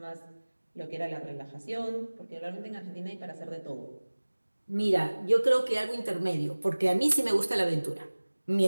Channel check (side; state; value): both; inverted; correlation -1.00